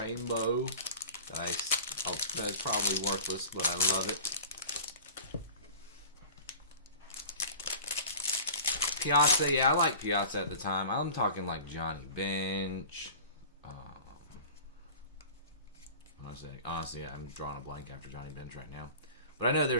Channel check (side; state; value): both; inverted; correlation -0.40